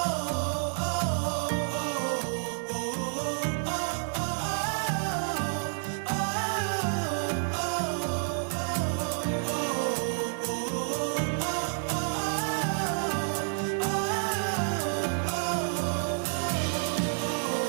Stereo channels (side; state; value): left; silent; 58 dB below the other